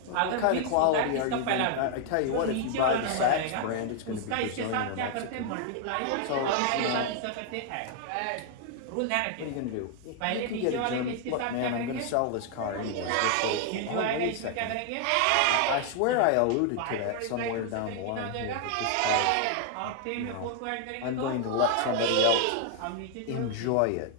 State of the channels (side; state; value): both; different; correlation 0.00